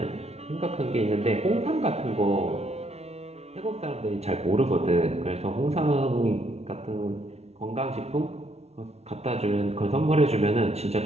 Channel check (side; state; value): left; late; 0.31 ms